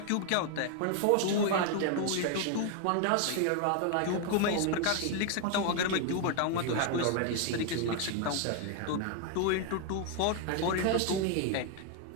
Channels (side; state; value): both; different; correlation 0.00